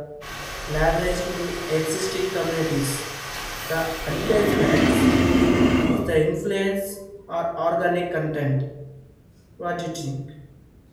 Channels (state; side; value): identical; both; correlation 1.00